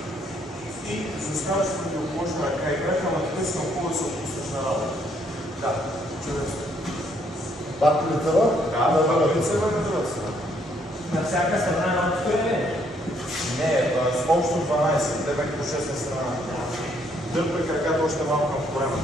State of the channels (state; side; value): normal; both; correlation 0.69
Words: и заставаш противоположна ръка и крака, ама така си много да се отпуснеш на работа. Да, чудесно. Пак лицева? Да, пак лицева на другата страна. На всяка страна на отстояние? Не, с общо 12, тебе като 6 на страна. Дърпай краката още малко към корема.